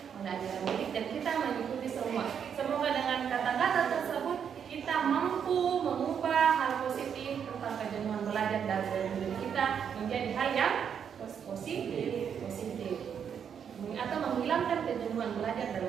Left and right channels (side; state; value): left; quieter; 7.8 dB